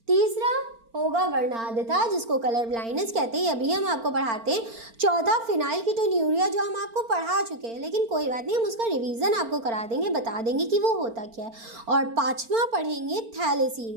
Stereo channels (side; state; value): left; late; 4.4 ms